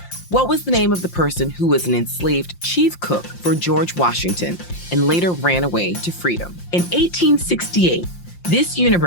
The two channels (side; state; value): right; late; 5.7 ms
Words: What was the name of the person who was an enslaved chief cook for George Washington and later ran away to freedom? In 1868, this